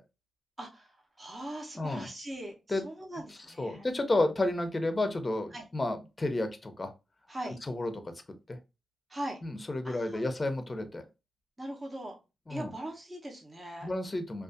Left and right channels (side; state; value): both; normal; correlation 0.93